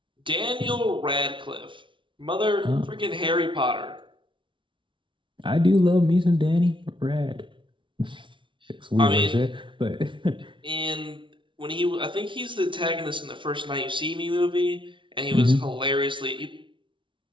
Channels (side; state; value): left; late; 0.24 ms